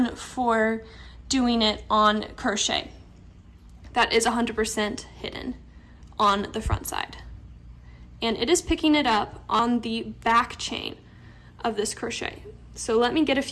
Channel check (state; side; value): identical; both; correlation 1.00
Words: for doing it on crochet that is 100% hidden on the front side. And it is picking it up on the back chain of this crochet. So let me get a